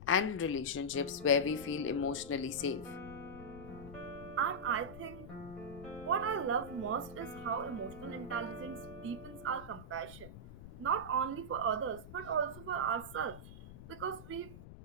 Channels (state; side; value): noise; left; rumble, 14 dB below the sound